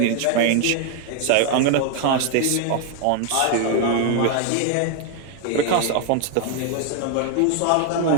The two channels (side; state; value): both; different; correlation 0.01